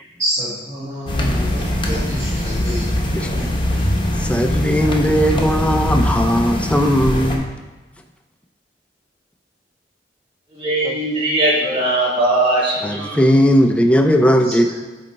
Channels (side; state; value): both; normal; correlation 0.71